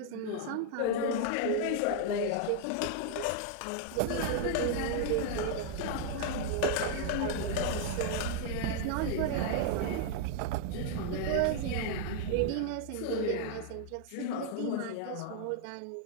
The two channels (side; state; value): both; different; correlation 0.00